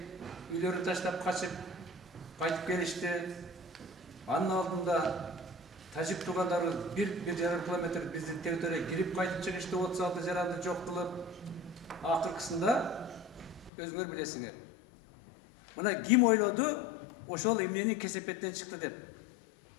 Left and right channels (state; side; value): drops out; right; at 13.7 s